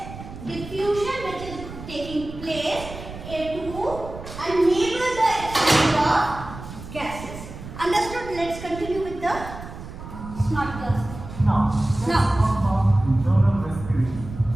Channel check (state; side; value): noise; right; rumble, 12 dB below the sound